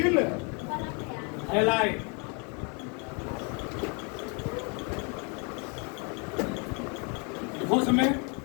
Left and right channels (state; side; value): quieter; right; 35.0 dB